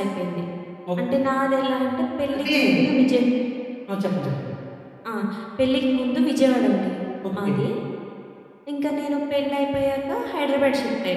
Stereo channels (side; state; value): both; identical; correlation 1.00